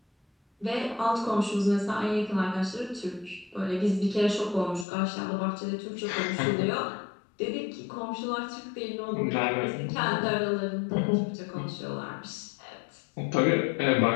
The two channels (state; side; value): drops out; right; at 4.9 s